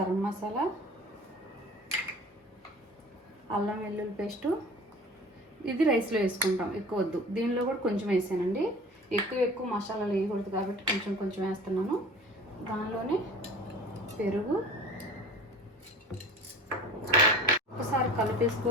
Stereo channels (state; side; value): normal; both; correlation 0.42